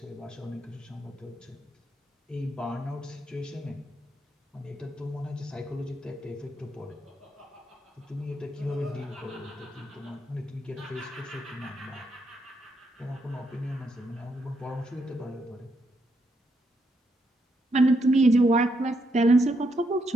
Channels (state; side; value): normal; both; correlation 0.78